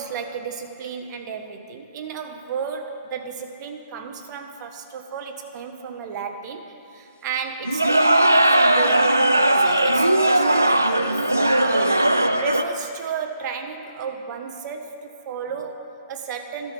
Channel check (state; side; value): inverted; both; correlation -0.82